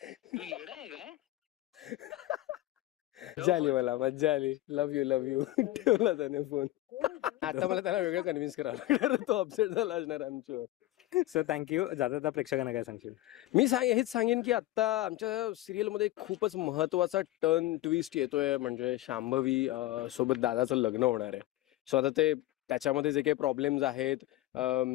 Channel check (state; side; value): quieter; right; 16.2 dB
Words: तू येडा आहे काय? झाली, मला मज्जा आली. लव्ह यू ठेवला त्याने फोन. आता मला त्याला वेगळं कन्व्हिन्स करावं लागणार, तो अपसेट झाला असणार आमच्यावर. So thank you. जाता प्रेक्षकांना काय सांगशील? मी हेच सांगेन की आता आमच्या सिरियलमध्ये खूपच महत्वाचा टर्न ट्विस्ट येतोय, म्हणजे शांभवी सोबत दादाचं लग्न होणार आहे. सो आता ते त्याच्यामध्ये जे काही प्रॉब्लेम्स आहेत,